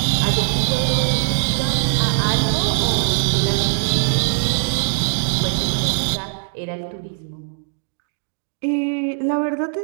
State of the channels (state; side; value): silent; left; digital silence